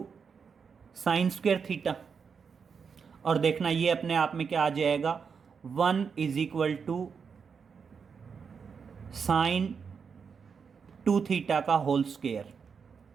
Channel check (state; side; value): quieter; left; 6.1 dB